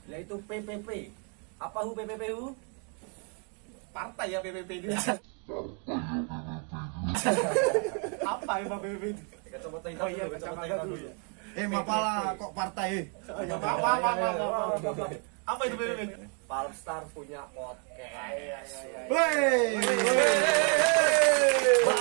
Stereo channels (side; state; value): left; quieter; 38.9 dB